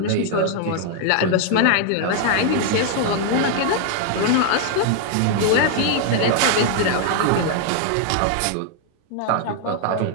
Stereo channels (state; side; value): different; both; correlation 0.00